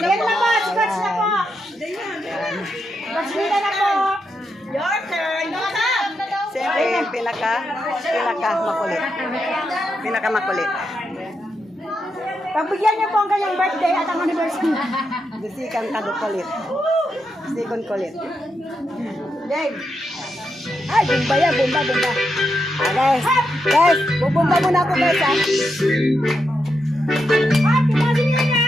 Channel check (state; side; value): normal; both; correlation 0.84